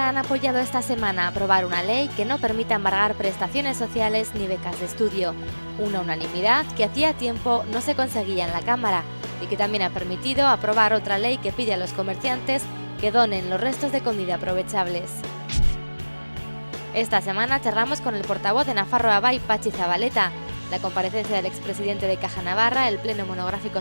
han apoyado esta semana aprobar una ley que no permita embargar prestaciones sociales ni becas de estudio. Una unanimidad que hacía tiempo no se conseguía en la Cámara y que también ha permitido aprobar otra ley que pide a los comerciantes que donen los restos de comida aprovechables. Esta semana charlamos con el portavoz de Nafarroa Bai, Patxi Zabaleta. La comparecencia del expresidente de Caja Navarra, el pleno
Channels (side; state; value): both; inverted; correlation -1.00